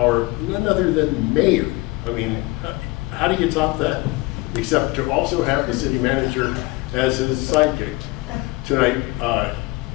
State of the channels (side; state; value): right; quieter; 22.3 dB